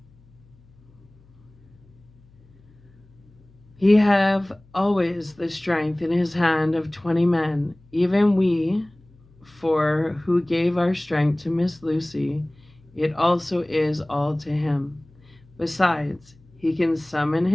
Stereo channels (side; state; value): left; noise; hum, 28 dB below the sound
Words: He have always the strength in his hand of 20 men, even we, for who gave our strength to Miss Lucy, it also is all to him. Besides, he can summon